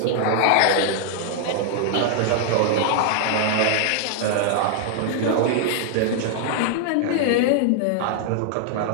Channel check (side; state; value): both; different; correlation 0.00